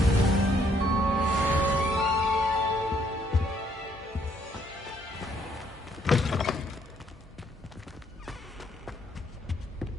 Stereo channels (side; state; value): both; normal; correlation 0.68